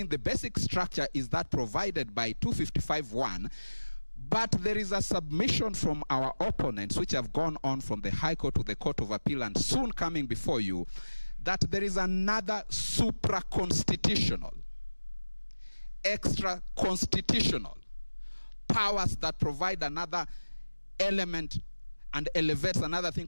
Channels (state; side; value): inverted; both; correlation -1.00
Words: the basic structure is that provided by 255(1), but there is a submission from our opponents which have gone on from the High Court to the Court of Appeal and soon coming before you, that there is another supra-constitutional, extra-constitutional powers that provide another element and elevates another thing